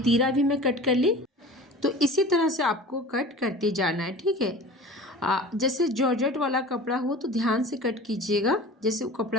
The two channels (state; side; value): normal; both; correlation 0.39